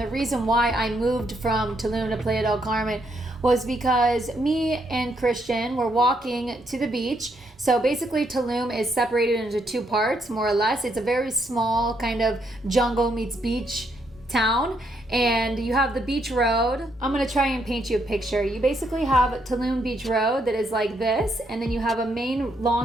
reason why I moved from Tulum to Playa del Carmen was because me and Christian were walking to the beach. So basically Tulum is separated into two parts, more or less. It's a very small kind of jungle meets beach town, and you have the beach road. I'm gonna try and paint you a picture. You basically have Tulum Beach Road that is like this, and then you have a main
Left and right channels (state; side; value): normal; both; correlation 0.75